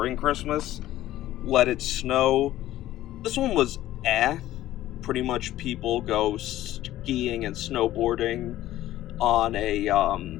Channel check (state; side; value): quieter; right; 14.3 dB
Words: Christmas. Let It Snow. This one was pretty much people go skiing and snowboarding on a